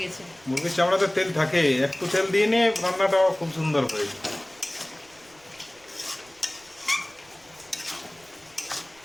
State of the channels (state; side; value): noise; right; rumble, 29 dB below the sound